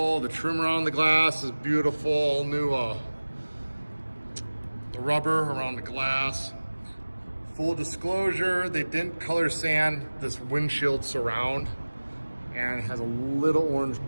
The trim around the glass is beautiful. All new the rubber around the glass. Full disclosure, they didn't color sand this windshield surround, and it has a little orange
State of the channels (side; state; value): both; inverted; correlation -1.00